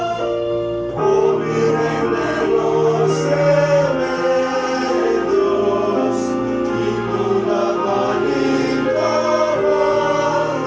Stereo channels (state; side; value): identical; both; correlation 1.00